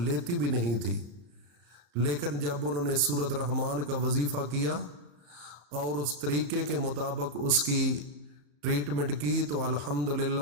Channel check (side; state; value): left; late; 35 ms